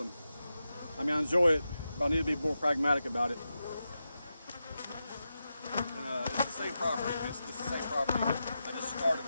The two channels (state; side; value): inverted; both; correlation -0.90